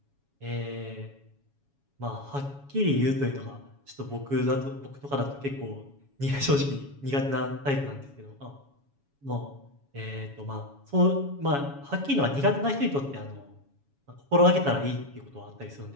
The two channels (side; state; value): left; late; 7.2 ms